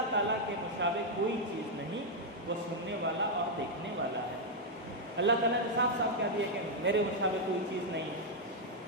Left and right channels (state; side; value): normal; both; correlation -0.02